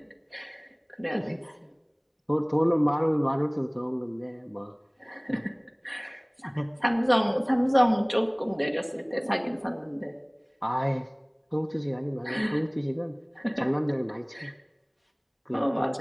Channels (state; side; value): identical; both; correlation 1.00